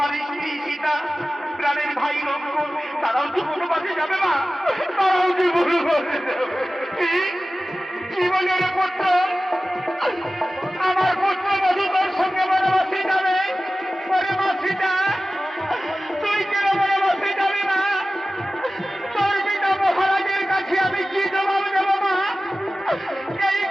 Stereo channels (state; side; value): normal; both; correlation 0.96